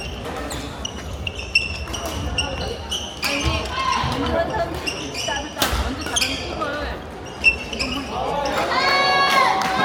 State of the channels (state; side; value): identical; both; correlation 1.00